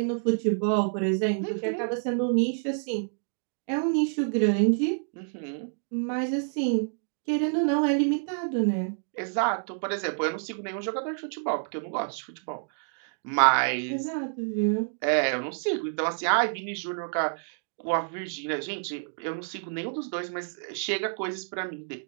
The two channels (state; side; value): silent; left; digital silence